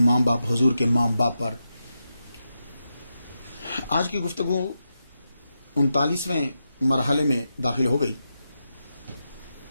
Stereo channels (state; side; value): inverted; both; correlation -0.88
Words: ماں باپ حضور کے ماں باپ پر۔ آج کی گفتگو 39ویں مرحلے میں داخل ہو گئی۔